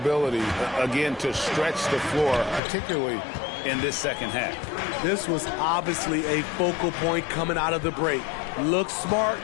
again, to stretch the floor, particularly in this second half. This was obviously a focal point coming out of the break. Look smart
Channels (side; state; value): right; drops out; at 2.6 s